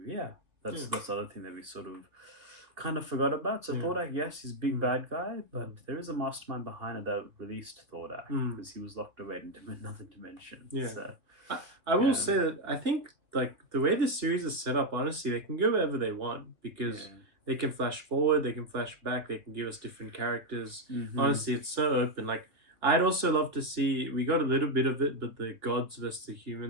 that's the other thing that we sort of kind of forgot about. So Thordak, yes, he's a big bad guy, but there is a mastermind behind it that released Thordak because he was locked away into another dimension. Yeah. So, I will say that I think like the way this series is set up, honestly, they can go wherever they want because they can flash forward, they can flash back, they can give us different characters. Honestly, it's so open. Like I'd also love to see, we got a little bit of it, but the gods versus the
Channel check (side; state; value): left; late; 2.6 ms